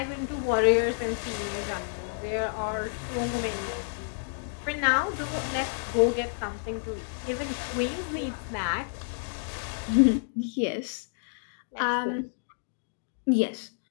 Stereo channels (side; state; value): right; silent; digital silence